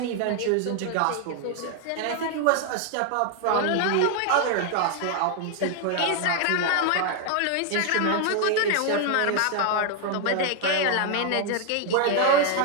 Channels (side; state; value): both; different; correlation 0.00